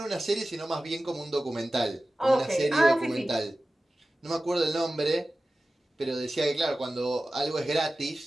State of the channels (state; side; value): normal; both; correlation 0.95